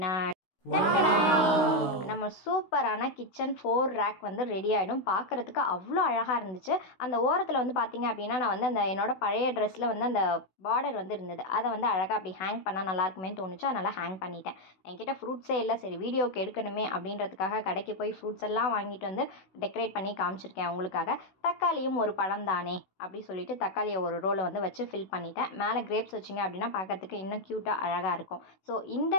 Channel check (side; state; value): right; late; 16 ms